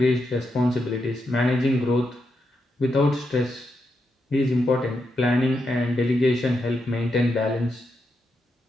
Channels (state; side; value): normal; both; correlation 0.83